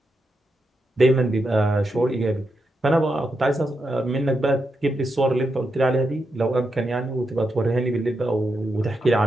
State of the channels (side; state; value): both; normal; correlation 0.85